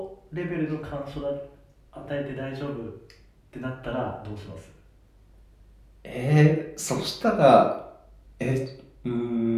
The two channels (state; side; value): identical; both; correlation 1.00